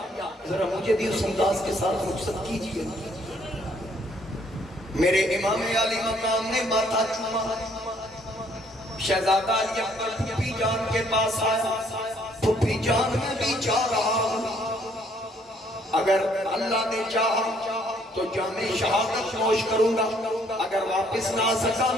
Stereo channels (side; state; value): both; normal; correlation 0.65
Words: ذرا مجھے بھی اس انداز کے ساتھ رخصت کیجئے۔ میرے امام علی مقام نے ماتھا چوما، شہزادہ علی اکبر پھوپھی جان کے پاس آیا، پھوپھی جان میں بھی چاہ رہا ہوں، اگر اللہ نے چاہا تو جامع شہادت نوش کروں گا، اگر واپس نہ سکا